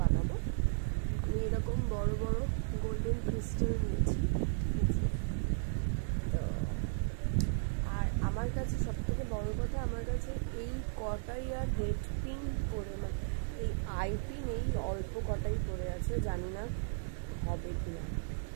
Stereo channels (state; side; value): silent; left; 54 dB below the other